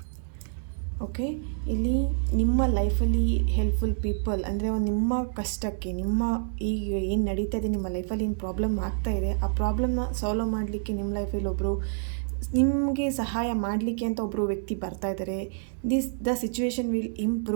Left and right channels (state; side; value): silent; left; digital silence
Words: Okay, ಇಲ್ಲಿ ನಿಮ್ಮ ಲೈಫಲ್ಲಿ ಹೆಲ್ಪ್ಫುಲ್ ಪೀಪಲ್ ಅಂದರೆ ನಿಮ್ಮ ಕಷ್ಟಕ್ಕೆ, ನಿಮ್ಮ ಈಗ ಏನು ನಡೀತಾ ಇದೆ, ನಿಮ್ಮ ಲೈಫಲ್ಲಿ ಏನು ಪ್ರಾಬ್ಲಮ್ ಆಗ್ತಾ ಇದೆ, ಆ ಪ್ರಾಬ್ಲಮ್ನ ಸಾಲ್ವ್ ಮಾಡಲಿಕ್ಕೆ ನಿಮ್ಮ ಲೈಫಲ್ಲಿ ಒಬ್ಬರು ನಿಮಗೆ ಸಹಾಯ ಮಾಡಲಿಕ್ಕೆ ಅಂತ ಒಬ್ಬರು ವ್ಯಕ್ತಿ ಬರ್ತಾ ಇದ್ದಾರೆ. The situation will